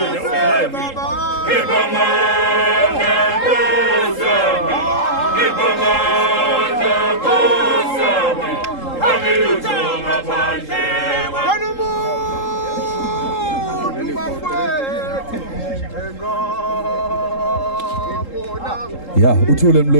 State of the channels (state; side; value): late; right; 3.8 ms